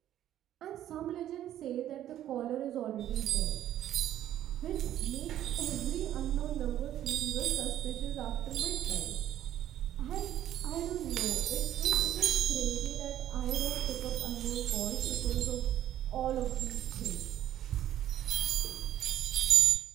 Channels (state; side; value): quieter; left; 12.0 dB